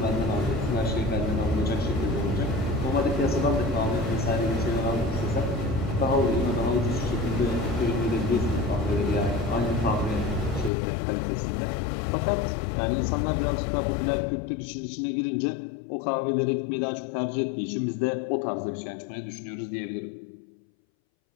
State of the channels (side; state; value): right; drops out; at 10.7 s